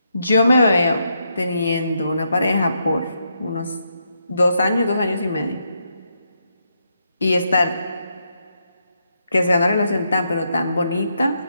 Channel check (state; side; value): inverted; both; correlation -0.80